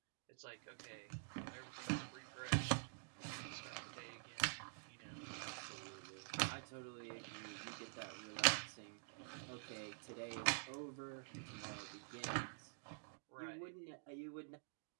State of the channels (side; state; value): left; silent; digital silence